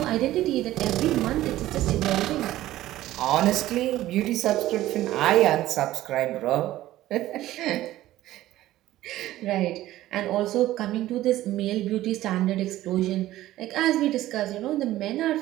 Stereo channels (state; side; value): quieter; left; 15.0 dB